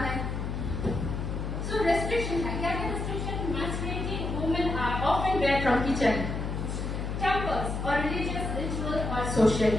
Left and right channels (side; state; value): left; noise; hum, 3 dB below the sound